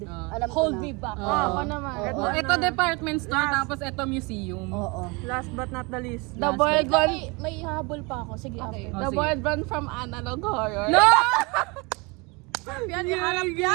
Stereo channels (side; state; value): left; quieter; 28.0 dB